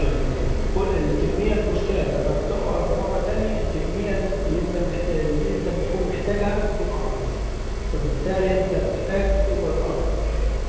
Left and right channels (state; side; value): identical; both; correlation 1.00